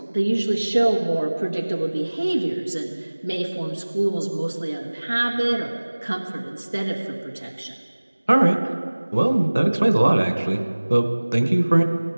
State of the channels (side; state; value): both; inverted; correlation -1.00